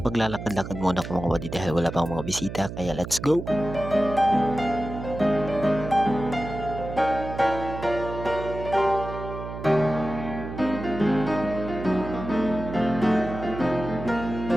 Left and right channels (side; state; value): right; noise; hum, 9 dB below the sound